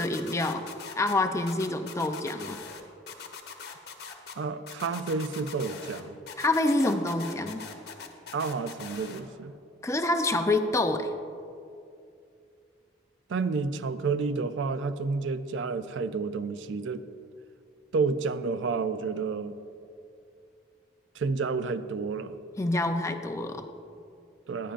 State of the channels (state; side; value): normal; both; correlation 0.47